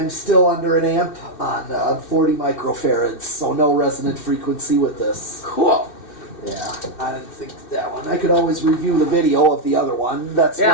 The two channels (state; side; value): late; right; 2.6 ms